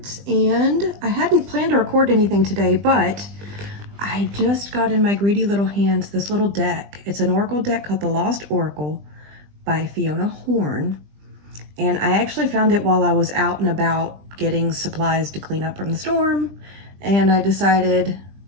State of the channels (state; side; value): late; left; 20 ms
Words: and I hadn't planned to record anything today, but I just got in my greedy little hands this little deck. It's an Oracle deck called the Lost Oracle by Fiona Horn, and I actually found it while I was out and about getting supplies to clean up from the storm, and I decided